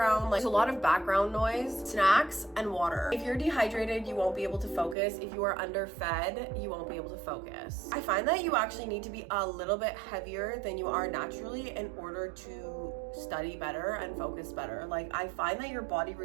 Like there's a lot of background noise, snacks, and water. If you're dehydrated, you won't be able to focus. If you are underfed, you won't be able to focus. I find that you actually need to be a little bit heavier than you are naturally in order to study better and focus better. Like I find that your body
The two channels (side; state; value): left; drops out; at 5.0 s